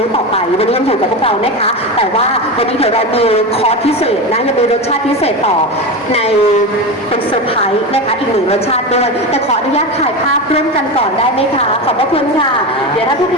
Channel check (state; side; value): normal; both; correlation 0.21